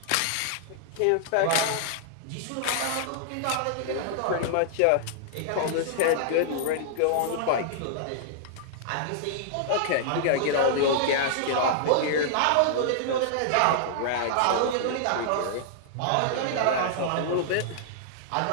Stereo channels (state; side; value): different; both; correlation -0.01